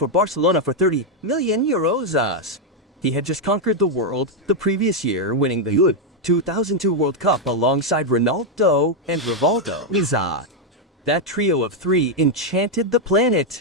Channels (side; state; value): both; normal; correlation 0.01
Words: Barcelona for 30 million euros. He had just conquered the world the previous year, winning the 2002 World Cup alongside Ronaldo and Rivaldo. That trio of three enchanted the